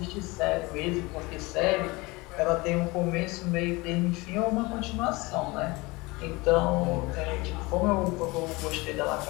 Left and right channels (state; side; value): quieter; right; 23.7 dB